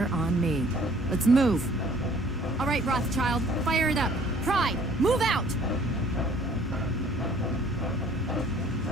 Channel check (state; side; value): normal; both; correlation 0.56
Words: on me. Let's move. All right, Rothschild, fire it up. Pride, move out!